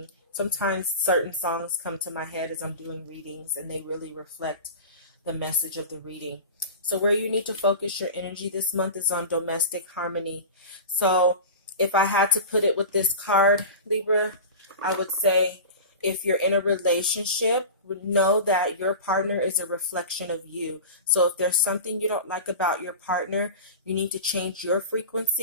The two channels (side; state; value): both; inverted; correlation -0.32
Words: Sometimes certain songs come to my head as I'm doing readings and they really reflect the message of the reading. So where you need to focus your energy this month is on domestic harmony. So if I had to put it with this card, Libra, I would say if you're in a relationship, know that your partner is a reflection of you. So if there's something you don't like about your partner, you need to change your